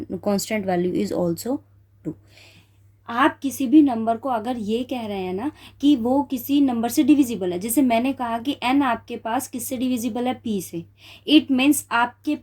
value is also 2. आप किसी भी नंबर को अगर ये कह रहे हैं ना कि वो किसी नंबर से डिविजिबल है, जैसे मैंने कहा कि n आपके पास किससे डिविजिबल है, p से, इट मीन्स आपके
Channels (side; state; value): both; identical; correlation 1.00